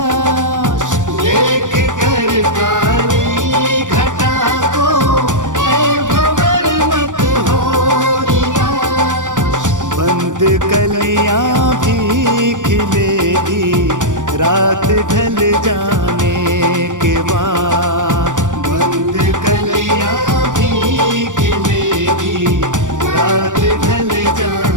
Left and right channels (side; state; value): left; late; 0.87 ms